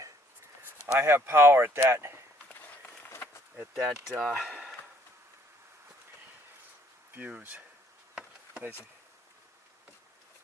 I have power at that fuse. Basically.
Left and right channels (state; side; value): normal; both; correlation 0.64